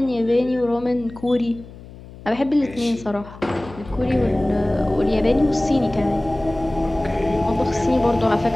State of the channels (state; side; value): noise; left; hum, 18 dB below the sound